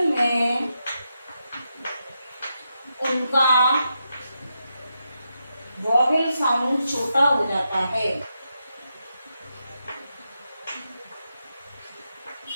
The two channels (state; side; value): inverted; both; correlation -0.85